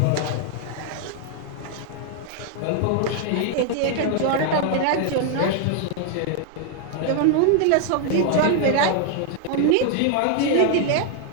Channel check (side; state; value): both; different; correlation 0.00